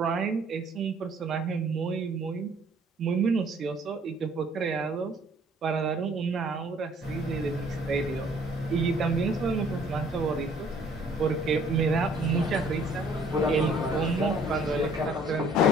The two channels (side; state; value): both; normal; correlation 0.58